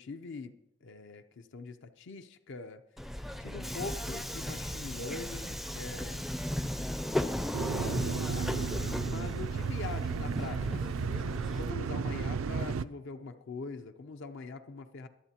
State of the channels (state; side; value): normal; both; correlation 0.67